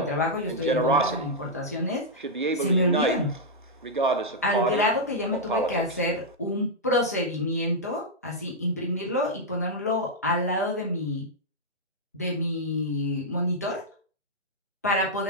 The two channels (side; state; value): both; normal; correlation -0.06